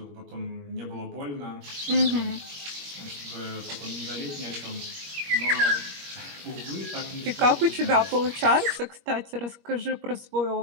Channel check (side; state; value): left; late; 21 ms